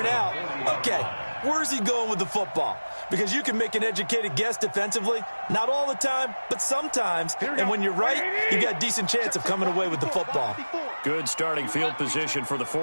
out, okay, where's he going with the football? Because you can make an educated guess defensively. Not all the time, but sometimes. And when you're right, you got a decent chance of coming away with the football. Good starting field position for the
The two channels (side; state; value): both; inverted; correlation -1.00